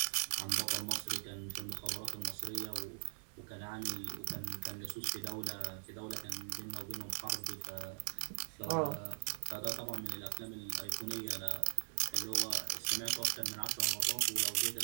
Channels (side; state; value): left; silent; 51 dB below the other